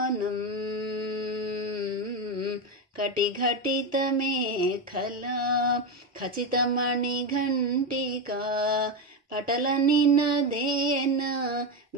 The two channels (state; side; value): normal; both; correlation 0.12